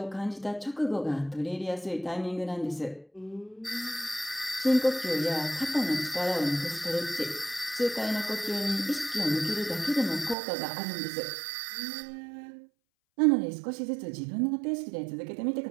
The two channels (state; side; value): drops out; left; at 10.4 s